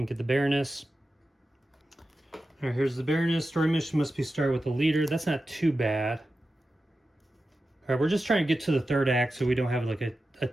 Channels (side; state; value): both; normal; correlation 0.92